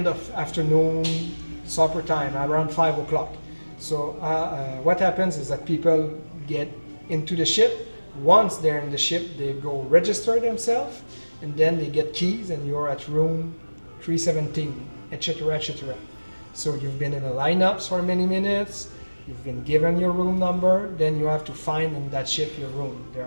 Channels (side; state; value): both; inverted; correlation -1.00